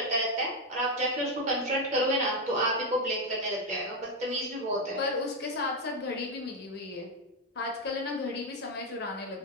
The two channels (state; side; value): normal; both; correlation 0.06